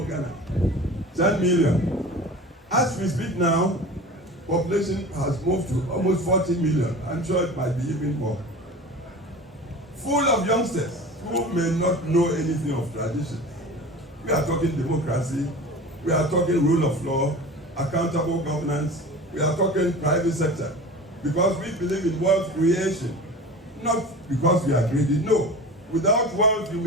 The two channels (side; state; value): both; normal; correlation 0.36